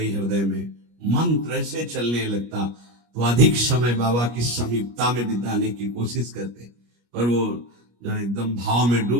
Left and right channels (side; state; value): left; late; 25 ms